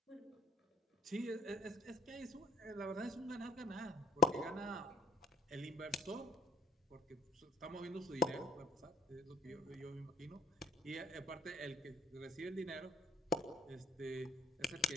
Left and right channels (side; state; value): both; normal; correlation 0.54